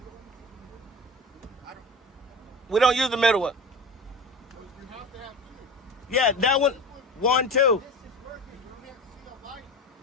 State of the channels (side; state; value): both; normal; correlation 0.31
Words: We don't use the middle one. Yeah, that one, 1, 2.